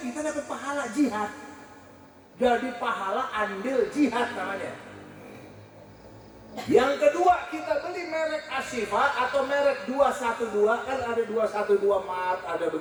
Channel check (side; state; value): both; identical; correlation 1.00